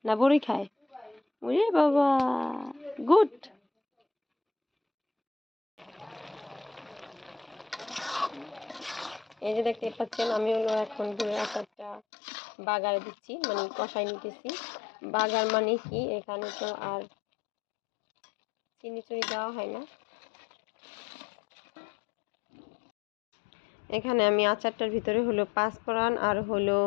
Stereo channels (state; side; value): drops out; right; at 12.0 s